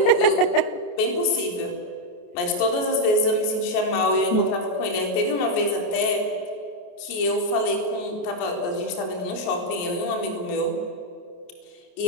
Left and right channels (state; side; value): late; right; 28 ms